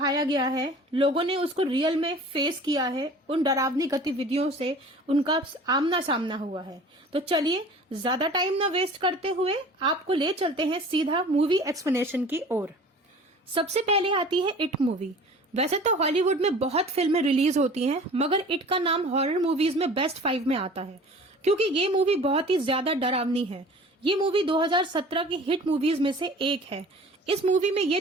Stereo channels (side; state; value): both; normal; correlation 0.44